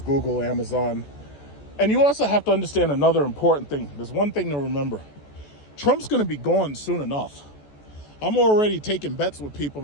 Google, Amazon. And you also have to understand another important thing. There's one thing to remember. Trump's going to be gone soon enough. I'm already taking bets with people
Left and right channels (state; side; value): late; right; 14 ms